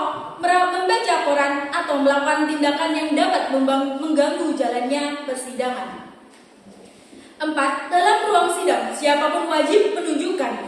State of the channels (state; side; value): identical; both; correlation 1.00